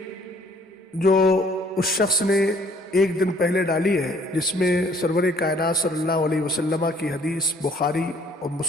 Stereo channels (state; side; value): normal; both; correlation 0.60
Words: جو اس شخص نے ایک دن پہلے ڈالی ہے، جس میں سرور کائنات صلی اللہ علیہ وسلم کی حدیث بخاری اور